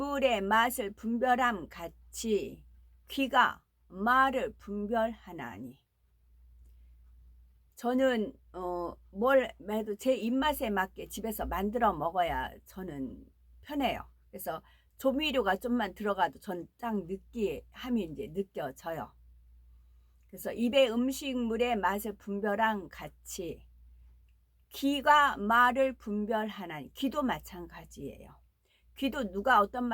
맛을 분별함 같이 귀가 말을 분별하나니. 저는 뭘 해도 제 입맛에 맞게 집에서 만들어 먹어야 저는 편해요. 그래서 조미료가 좀만 들어가도 전 딱 느끼함이 이제 느껴져요. 그래서 입의 음식물의 맛을 분별함 같이 귀가 말을 분별하나니. 귀도 마찬가지예요. 귀도 누가 어떤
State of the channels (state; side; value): identical; both; correlation 1.00